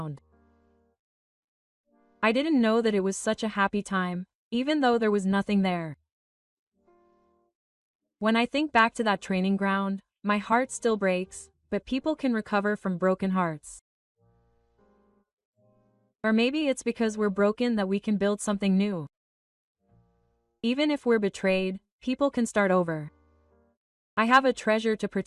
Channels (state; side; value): identical; both; correlation 1.00